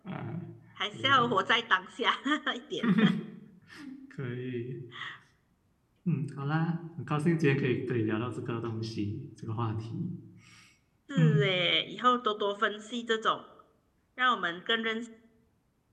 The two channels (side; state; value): both; identical; correlation 1.00